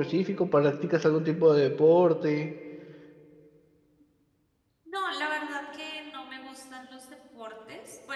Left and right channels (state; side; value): identical; both; correlation 1.00